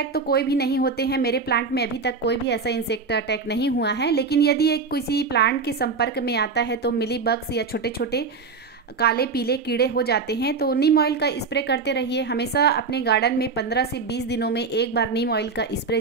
तो कोई भी नहीं होते हैं। मेरे प्लांट में अभी तक कोई भी ऐसा इंसेक्ट अटैक नहीं हुआ है। लेकिन यदि एक किसी प्लांट के संपर्क में आता है तो मिली बग्स या छोटे छोटे काले पीले कीड़े हो जाते हैं। तो नीम ऑयल का स्प्रे करते रहिए। हमेशा अपने गार्डन में 15 से 20 दिनों में एक बार नीम ऑयल का स्प्रे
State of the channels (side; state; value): left; quieter; 4.6 dB